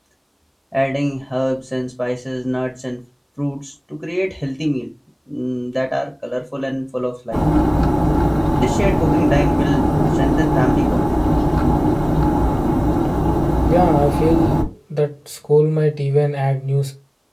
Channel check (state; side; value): identical; both; correlation 1.00